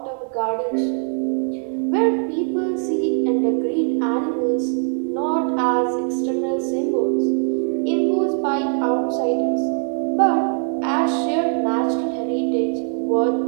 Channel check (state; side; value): silent; left; 57 dB below the other